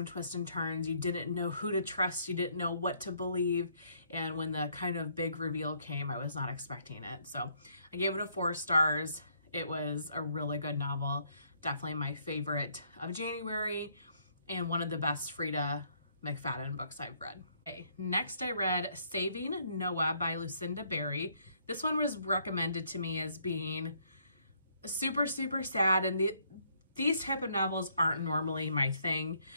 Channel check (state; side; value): inverted; both; correlation -0.69